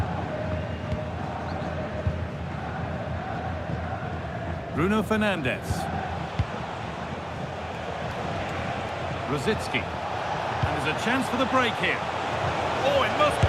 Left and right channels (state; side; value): identical; both; correlation 1.00